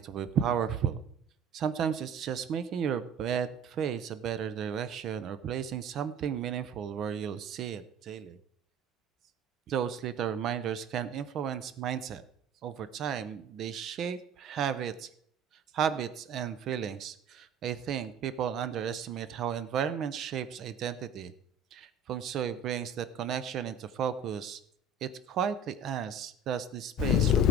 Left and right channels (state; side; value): quieter; left; 3.7 dB